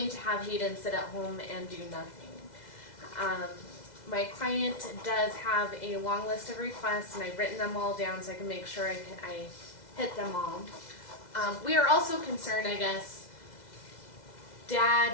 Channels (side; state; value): right; late; 2.0 ms